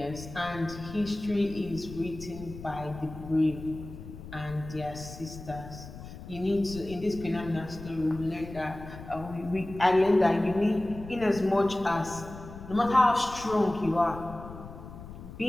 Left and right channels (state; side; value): noise; left; rumble, 13 dB below the sound